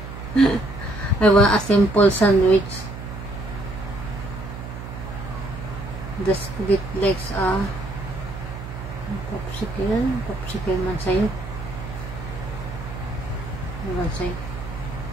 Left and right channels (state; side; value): noise; right; hum, 10 dB below the sound